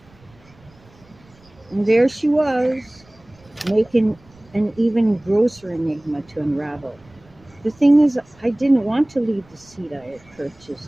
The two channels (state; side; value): noise; right; rumble, 28 dB below the sound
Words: And there she was, making an even grosser enigma to unravel. The thing is, I didn't want to leave the seat I had